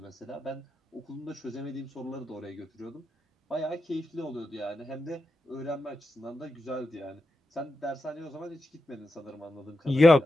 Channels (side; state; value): both; normal; correlation 0.88